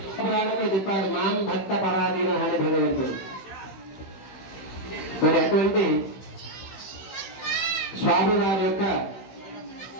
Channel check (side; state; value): right; late; 16 ms